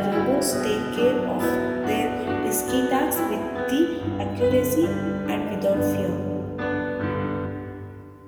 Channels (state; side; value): identical; both; correlation 1.00